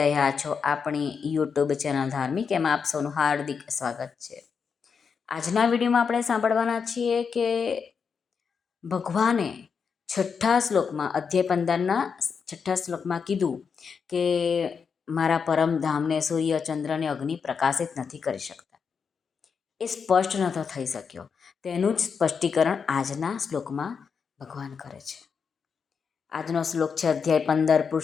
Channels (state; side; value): quieter; right; 6.0 dB